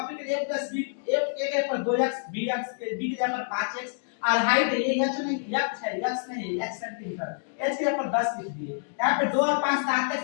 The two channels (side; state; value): right; silent; digital silence